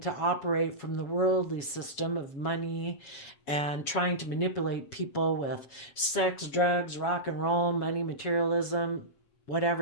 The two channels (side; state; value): right; late; 7.1 ms